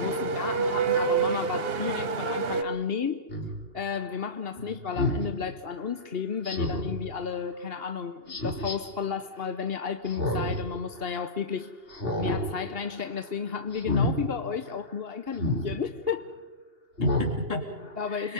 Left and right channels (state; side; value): late; left; 2.8 ms